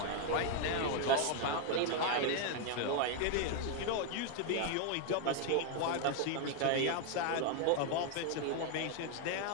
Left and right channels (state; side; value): different; both; correlation 0.01